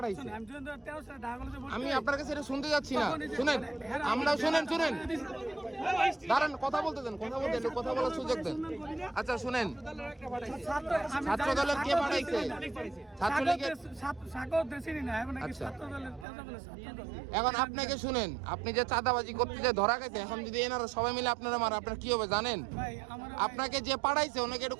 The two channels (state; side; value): drops out; left; at 16.2 s